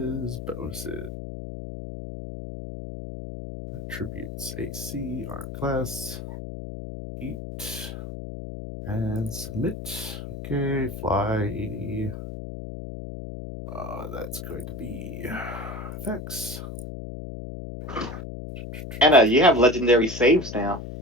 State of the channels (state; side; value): noise; left; hum, 9 dB below the sound